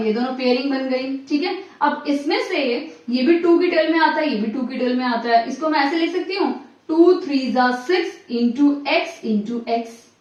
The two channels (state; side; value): identical; both; correlation 1.00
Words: दोनों पेयरिंग बन गई, ठीक है। अब इसमें से ये भी 2 की टेल में आता है, ये भी 2 की टेल में आता है। इसको मैं ऐसे लिख सकती हूँ 2 3 6 इंटू x,